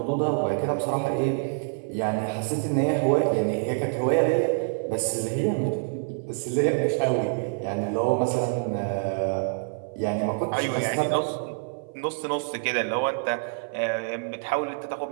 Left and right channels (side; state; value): left; silent; 57 dB below the other